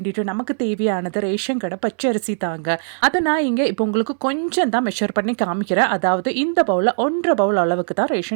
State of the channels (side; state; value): left; silent; digital silence